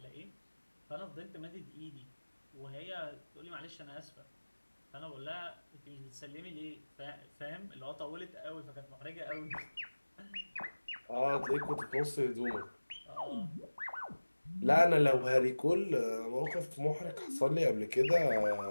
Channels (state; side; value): inverted; both; correlation -1.00